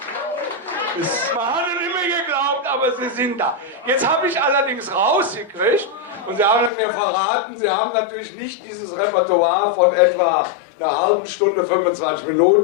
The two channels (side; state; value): right; drops out; at 6.7 s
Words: es immer geglaubt, aber sie sind da. Jetzt habe ich allerdings rausgekriegt, und Sie haben mir verraten, Sie haben natürlich nicht dieses Repertoire von etwa einer halben Stunde, 25